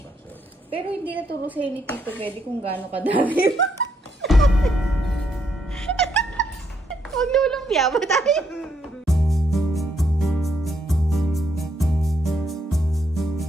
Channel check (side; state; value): both; normal; correlation 0.75